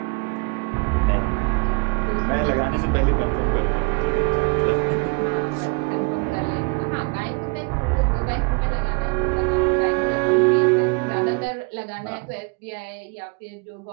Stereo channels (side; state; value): left; quieter; 31.6 dB